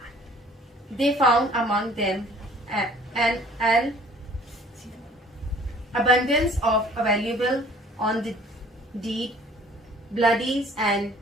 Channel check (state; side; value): normal; both; correlation 0.54